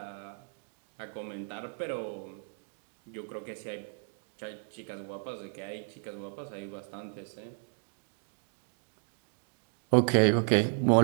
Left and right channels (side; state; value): left; silent; 55 dB below the other